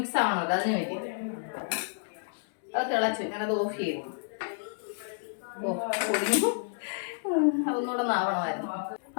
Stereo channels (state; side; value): silent; right; digital silence